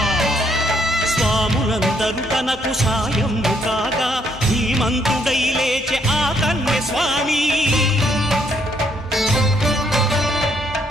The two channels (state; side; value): normal; both; correlation 0.71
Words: స్వాములందరూ తనకు సాయము కాగా ధీమంతుడై లేచే ఆ కన్య స్వామి